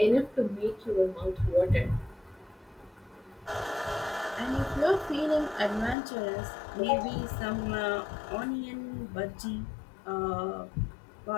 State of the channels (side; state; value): right; drops out; at 6.0 s